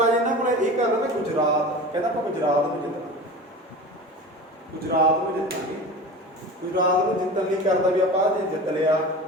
ਇਹਨਾਂ ਕੋਲ ਇਹ ਕਰਦਾ ਨਾ, ਗੁਜਰਾਤ ਕਹਿੰਦਾ ਆਪਾਂ ਗੁਜਰਾਤ ਨੂੰ ਜਿੱਤਣਾ, ਗੁਜਰਾਤ ਨੂੰ ਜਿੱਤਣ ਲਈ ਕਰਦਾ ਵੀ ਆਪਾਂ ਜੇ ਜਿੱਤ ਲਿਆ,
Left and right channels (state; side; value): normal; both; correlation 0.33